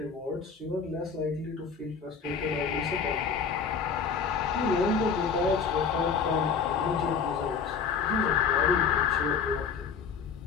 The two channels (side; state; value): right; quieter; 6.0 dB